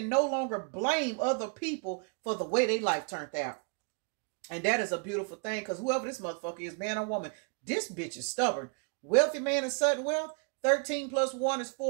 no longer blame other people for the way their life turned out. And that is a beautiful thing, because whoever this motherfucker is, man or woman, this bitch is stubborn. Wealthy man and sudden wealth. 13 plus 1 is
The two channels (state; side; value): quieter; left; 37.8 dB